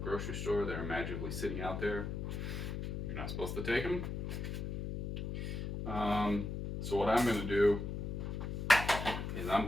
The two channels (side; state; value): left; noise; hum, 4 dB below the sound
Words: store, they're magically sitting out there. You're not supposed to take them. So what I'm going to do is